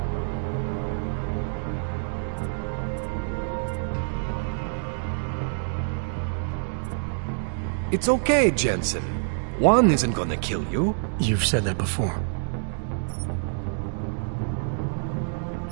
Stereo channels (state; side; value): silent; left; 60 dB below the other